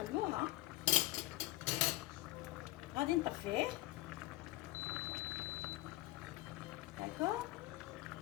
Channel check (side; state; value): right; quieter; 18.4 dB